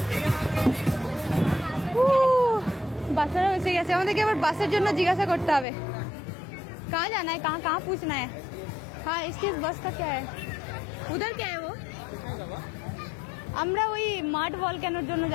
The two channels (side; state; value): right; drops out; at 5.7 s